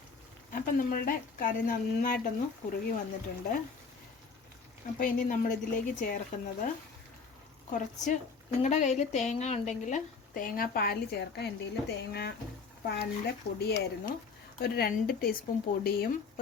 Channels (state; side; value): quieter; right; 5.0 dB